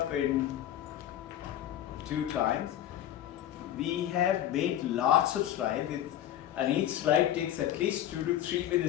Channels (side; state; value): right; quieter; 11.8 dB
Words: in 2 times. We have made lots of slides, and each slide takes at least 2 to 3